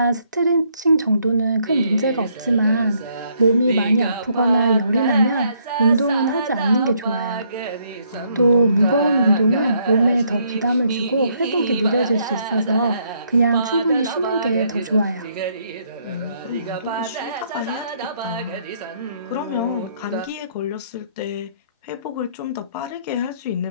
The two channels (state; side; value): inverted; both; correlation -0.70